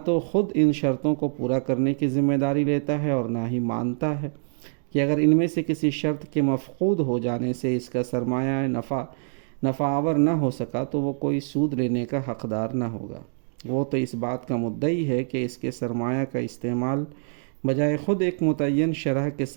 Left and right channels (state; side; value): silent; left; digital silence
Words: تو خود ان شرطوں کو پورا کرنے کی ذمہ داری لیتا ہے اور نہ ہی مانتا ہے کہ اگر ان میں سے کسی شرط کے مفقود ہو جانے سے اس کا سرمایہ نفع آور نہ ہو سکا تو وہ کوئی سود لینے کا حقدار نہ ہوگا۔ وہ تو اس بات کا مدعی ہے کہ اس کے سرمایہ کا استعمال بجائے خود ایک متعین شرح کے